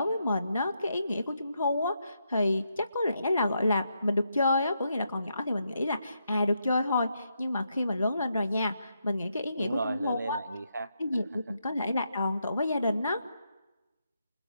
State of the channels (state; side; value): inverted; both; correlation -0.81